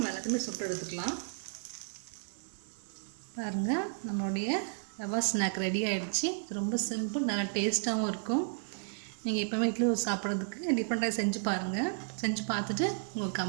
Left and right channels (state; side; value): silent; left; digital silence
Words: எல்லாத்தையுமே சுட்டு எடுத்துக்கலாம். பாருங்கள், நம்மளுடைய ரவா ஸ்நாக் ரெடி ஆகிடுச்சு. ரொம்ப சிம்பிள், நல்லா டேஸ்ட்டாகவும் இருக்கும். நீங்கள் எப்போவுமே இட்லி சாப்பிட்றதுக்கு டிஃப்ரெண்ட்டாக செஞ்சு பாருங்கள். செஞ்சு பார்த்துட்டு உங்கள்